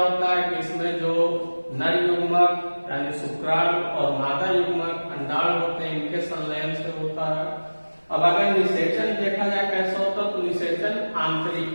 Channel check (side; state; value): both; inverted; correlation -1.00